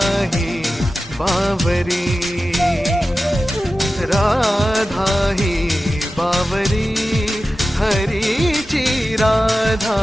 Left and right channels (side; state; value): both; normal; correlation 0.94